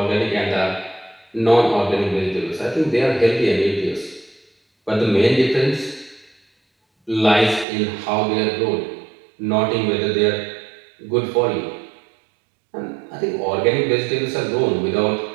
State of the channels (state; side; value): drops out; left; at 7.7 s